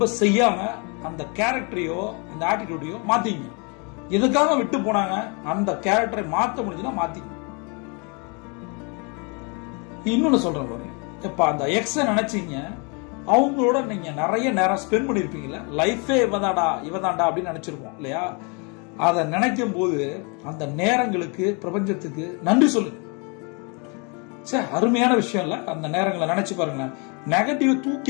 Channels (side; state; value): right; quieter; 33.6 dB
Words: செய்யாம அந்த கேரக்டரையோ அந்த ஆட்டிடியூடையோ மாத்திங்க. எதுக்காக விட்டு போனாங்க அந்த கேரக்டரை மாத்த முடிஞ்சுன்னா மாத்திங்க. இன்னொன்னு சொல்றேன் பாருங்க, இப்ப அந்த எக்ஸ நினைச்சீங்க, அவங்களோட நீங்க நிறைய நேரம் ஸ்பெண்ட் பண்ணிருப்பீங்கல்ல, லைஃபே இவதாண்டா அப்படின்னு நினைச்சிருப்போம் இல்லையா? அதை நினைக்கும் போது அந்த நேரங்களுக்கு பிரபஞ்சத்துக்கு நன்றி சொல்லுங்க. சரி, அருமையான விஷயம் இல்ல? அந்த நேரங்களை நினைச்சு பாருங்க, நெகட்டிவ்